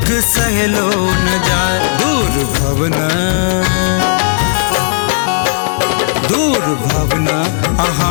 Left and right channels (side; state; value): right; silent; digital silence